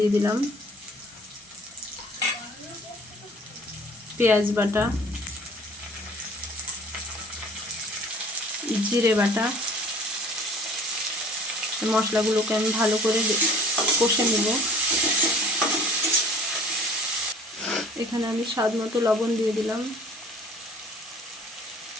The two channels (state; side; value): normal; both; correlation 0.49